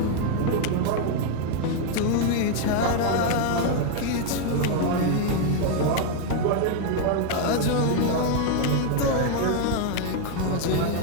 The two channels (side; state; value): both; different; correlation 0.00